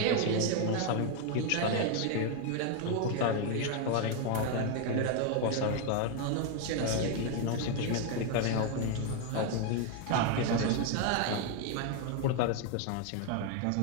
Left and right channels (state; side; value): different; both; correlation 0.01